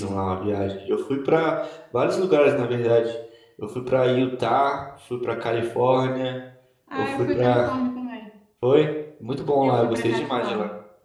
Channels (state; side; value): identical; both; correlation 1.00